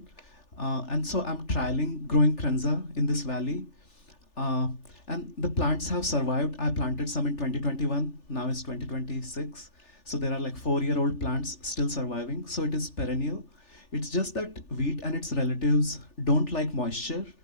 And so I'm trialing growing Kernza in this valley. And the plants have survived. I planted some in 2021, now it's 2026. So there are like 4-year-old plants still surviving. So it is perennial. It's just that wheat and its relatives don't like moisture.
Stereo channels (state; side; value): late; right; 3.4 ms